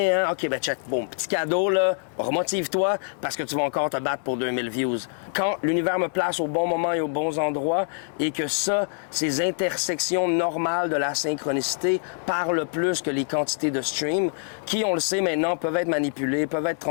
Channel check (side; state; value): right; silent; digital silence